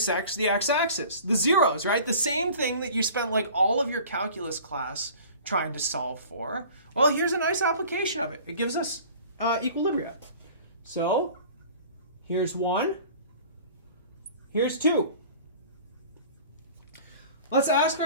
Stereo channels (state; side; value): inverted; both; correlation -0.44